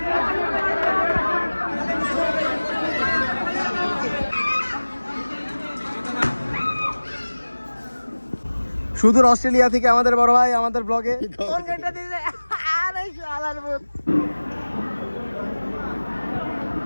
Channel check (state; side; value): inverted; both; correlation -1.00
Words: সুদূর অস্ট্রেলিয়া থেকে আমাদের বড় ভাই আমাদের ব্লগে কোন গেটটা দিছে। আরে শালার ভূত